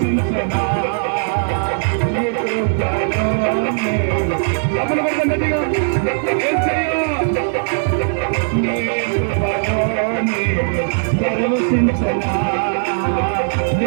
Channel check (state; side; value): silent; left; digital silence